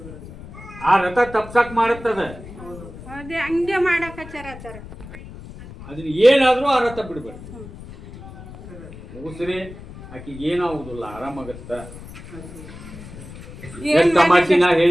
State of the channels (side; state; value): left; noise; rumble, 15 dB below the sound